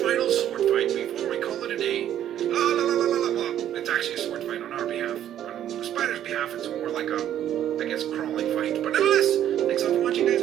sword fight before we call it a day. Well, it's actually a sword fight on our behalf. On the spider's behalf, it's more like a, I guess, crawling fight. But nevertheless, thanks all for watching, guys.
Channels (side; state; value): left; quieter; 11.0 dB